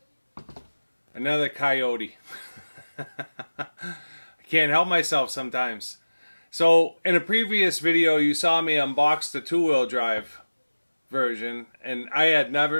Another coyote. I can't help myself sometimes. So in a previous video you saw me unbox the two-wheel drive version, and I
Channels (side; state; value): both; inverted; correlation -1.00